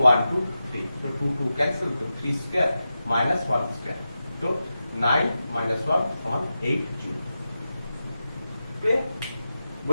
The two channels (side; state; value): both; inverted; correlation -0.91